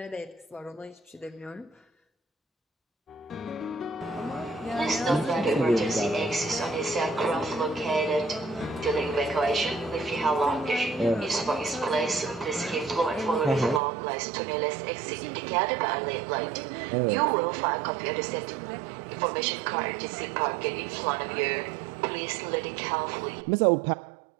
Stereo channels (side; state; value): left; drops out; at 13.8 s